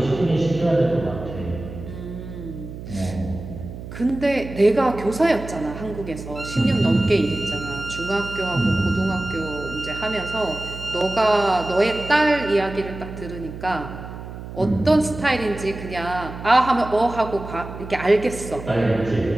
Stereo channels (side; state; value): right; noise; hum, 11 dB below the sound